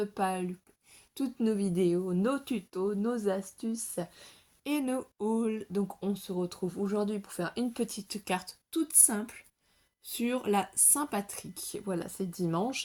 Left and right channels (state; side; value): identical; both; correlation 1.00